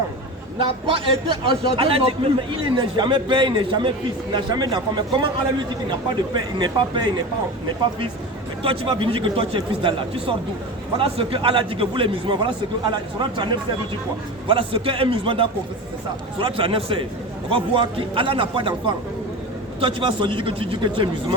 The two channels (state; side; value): normal; both; correlation 0.28